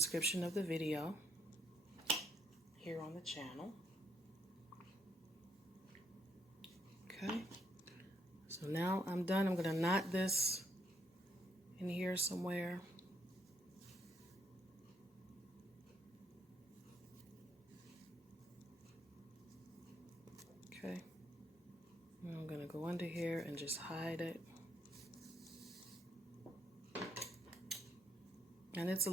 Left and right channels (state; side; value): normal; both; correlation 0.73